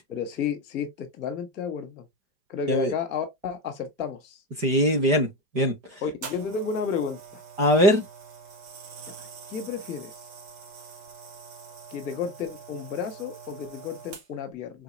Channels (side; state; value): left; late; 5.0 ms